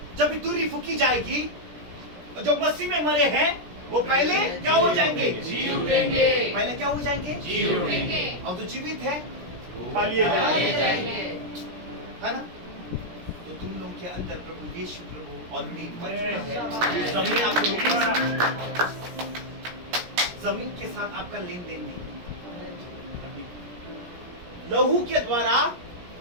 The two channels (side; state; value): left; late; 17 ms